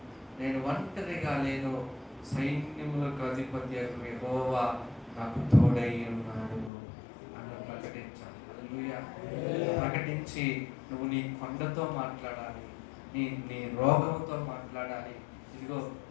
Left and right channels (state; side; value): drops out; right; at 6.7 s